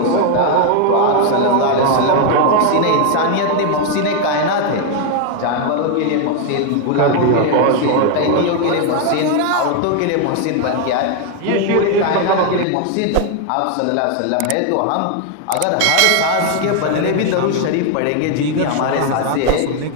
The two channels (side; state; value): both; different; correlation 0.01